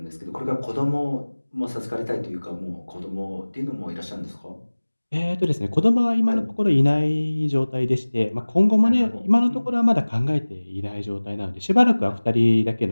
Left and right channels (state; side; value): inverted; both; correlation -1.00